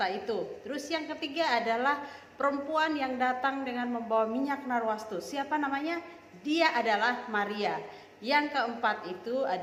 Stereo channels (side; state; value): both; identical; correlation 1.00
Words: itu. Terus yang ketiga adalah perempuan yang datang dengan membawa minyak narwastu. Siapa namanya? Dia adalah Maria. Yang keempat itu